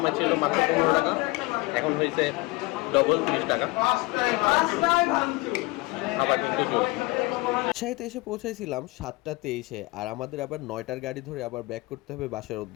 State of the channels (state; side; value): quieter; right; 23.1 dB